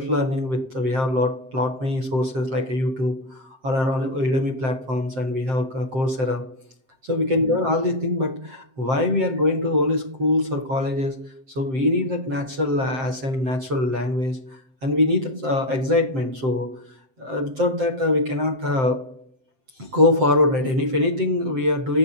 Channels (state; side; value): late; left; 7.6 ms